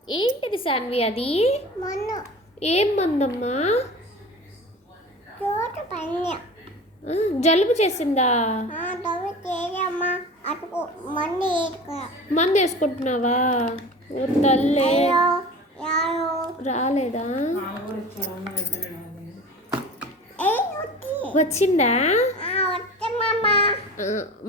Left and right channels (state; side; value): normal; both; correlation 0.37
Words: ఏంటిది సాన్వి అది? మన్ను ఏం మందమ్మా? చోటు పన్య జలుబు చేసిందా? తవ్వి తేజమ్మా అటుకు మందు వేసుకో. మందు వేసుకుంటున్నావా? ఓ తల్లే, యారు రాలేదా? వచ్చి వచ్చిందా? వచ్చమ్మా.